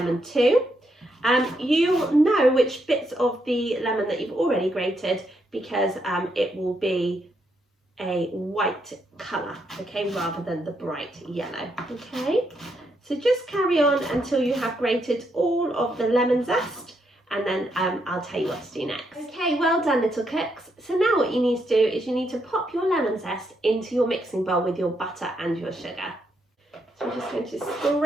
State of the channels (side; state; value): both; normal; correlation 0.78